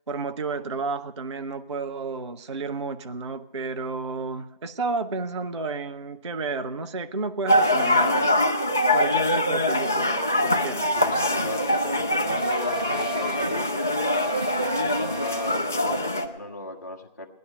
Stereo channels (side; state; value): both; inverted; correlation -0.50